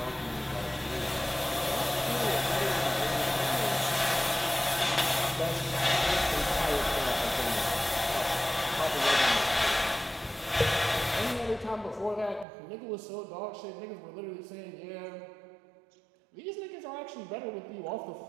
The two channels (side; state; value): left; drops out; at 12.5 s